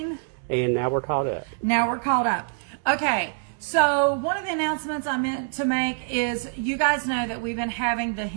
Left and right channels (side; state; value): left; silent; digital silence